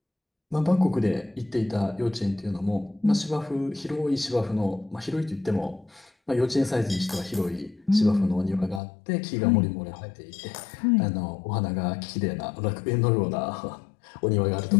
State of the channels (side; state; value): right; drops out; at 8.8 s